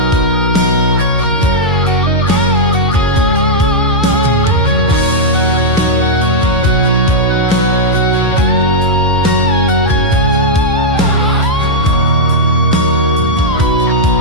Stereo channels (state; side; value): normal; both; correlation -0.04